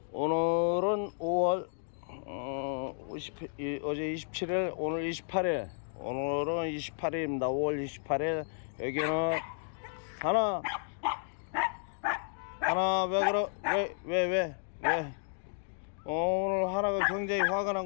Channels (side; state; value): right; silent; digital silence